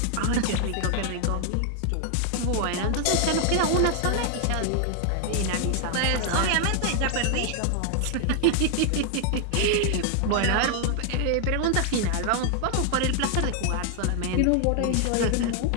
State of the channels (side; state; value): both; different; correlation 0.00